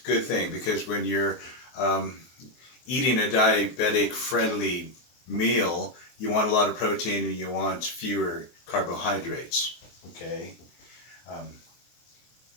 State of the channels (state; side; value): late; right; 23 ms